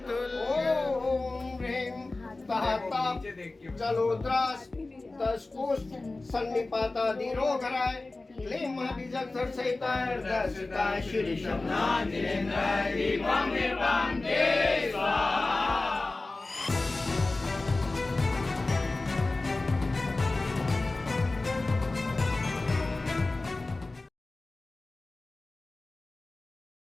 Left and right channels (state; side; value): quieter; right; 3.2 dB